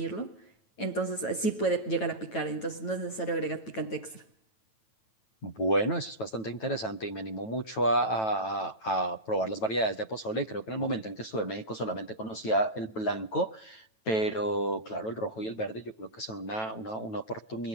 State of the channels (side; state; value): right; late; 9.1 ms